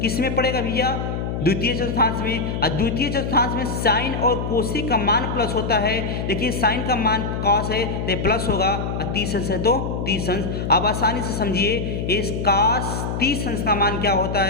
किस में पड़ेगा भैया? द्वितीय चतुर्थांश में। और द्वितीय चतुर्थांश में साइन और कोसिक का मान प्लस होता है। देखिए साइन का मान कॉस है तो प्लस होगा, और 30 अंश है तो 30 अंश। अब आसानी से समझिए इस कॉस 30 अंश का मान क्या होता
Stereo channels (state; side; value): noise; left; hum, 3 dB below the sound